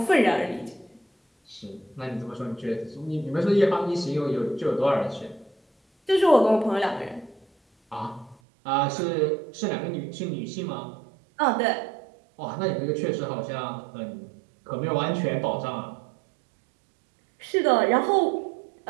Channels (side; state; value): left; drops out; at 8.3 s